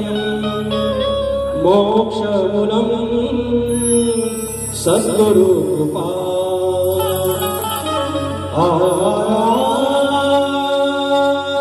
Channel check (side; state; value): both; identical; correlation 1.00